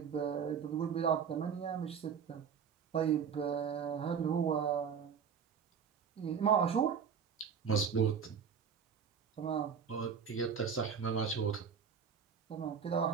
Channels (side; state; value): left; quieter; 7.0 dB